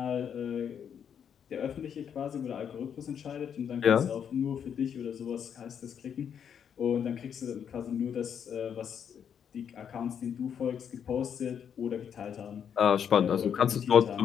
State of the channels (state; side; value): quieter; right; 8.1 dB